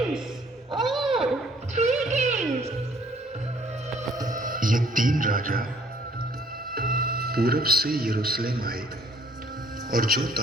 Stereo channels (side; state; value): both; normal; correlation 0.60